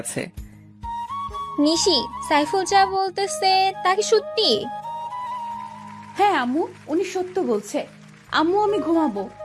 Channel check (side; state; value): both; identical; correlation 1.00